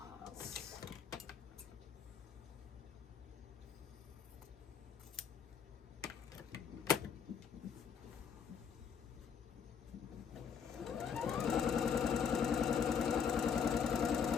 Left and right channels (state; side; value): quieter; right; 7.0 dB